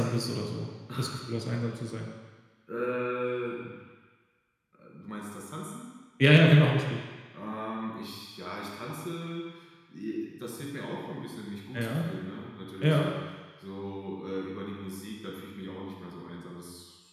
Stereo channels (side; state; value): both; identical; correlation 1.00